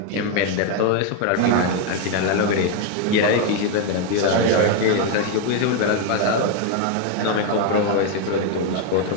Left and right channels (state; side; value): different; both; correlation 0.01